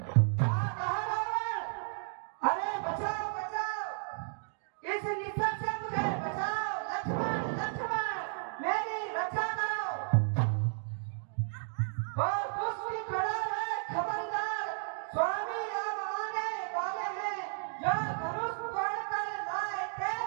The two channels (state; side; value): silent; left; digital silence